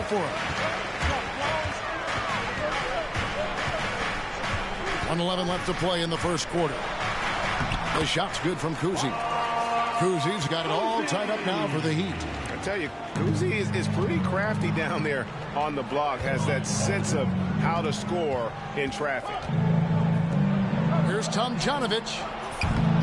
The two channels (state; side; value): identical; both; correlation 1.00